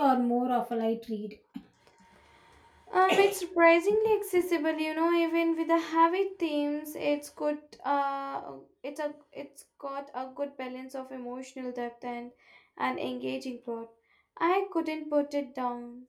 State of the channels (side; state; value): both; identical; correlation 1.00